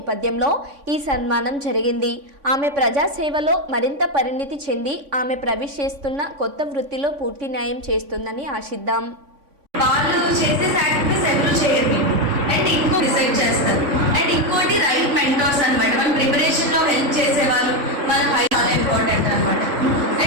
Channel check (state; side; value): late; left; 3.5 ms